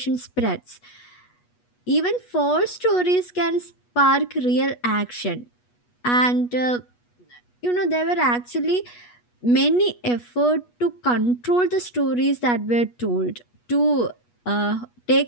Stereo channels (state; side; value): late; right; 8.3 ms